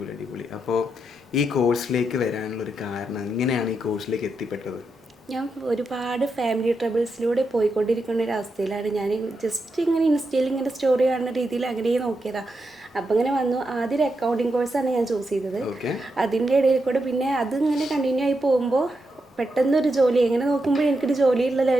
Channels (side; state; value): both; normal; correlation 0.85